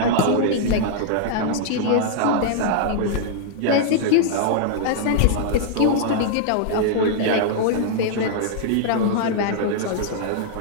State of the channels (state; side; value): different; both; correlation -0.01